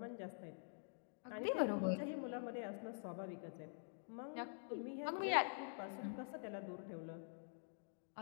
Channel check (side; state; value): right; silent; digital silence